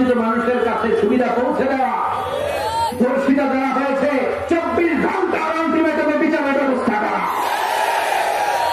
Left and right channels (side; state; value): both; identical; correlation 1.00